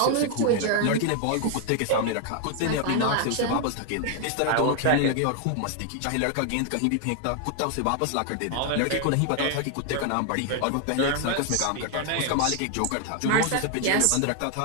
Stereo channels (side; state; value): both; different; correlation 0.00